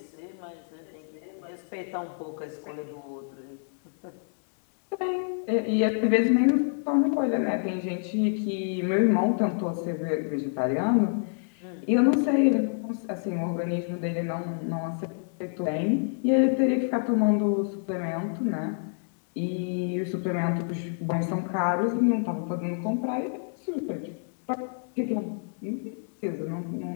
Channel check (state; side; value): silent; right; digital silence